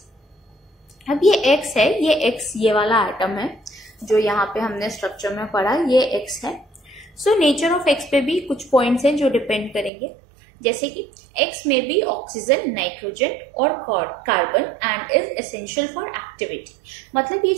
अब ये X है, ये वाला एटम है जो यहाँ पे हमने स्ट्रक्चर में पढ़ा, ये X है। सो नेचर ऑफ X पे भी कुछ पॉइंट्स हैं जो डिपेंड करेंगे, जैसे कि X में भी ऑक्सीजन, नाइट्रोजन और carbon and is essential for activity. मतलब ये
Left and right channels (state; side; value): drops out; left; at 9.9 s